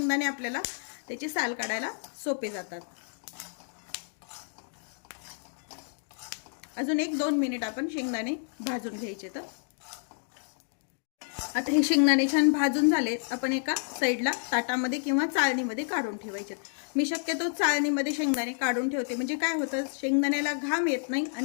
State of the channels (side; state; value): right; silent; digital silence